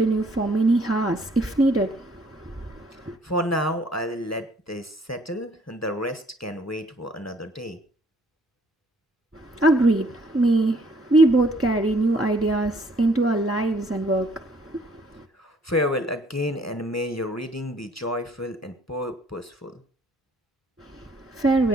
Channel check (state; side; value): normal; both; correlation 0.62